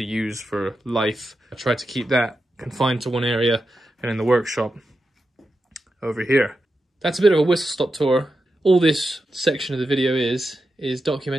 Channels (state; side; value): normal; both; correlation 0.89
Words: use for life. I try to keep that confined to one area, and in the workshop over here. That's a bit of a whistle-stop tour. All this section of the video is